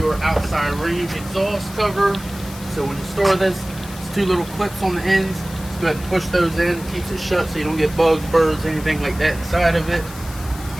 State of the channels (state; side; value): noise; left; hiss, 16 dB below the sound